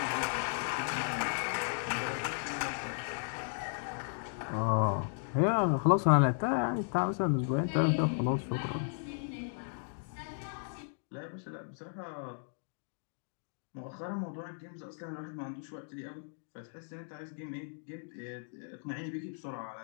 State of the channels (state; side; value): silent; right; digital silence